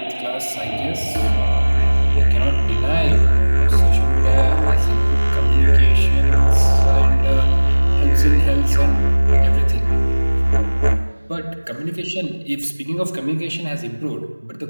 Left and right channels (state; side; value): inverted; both; correlation -1.00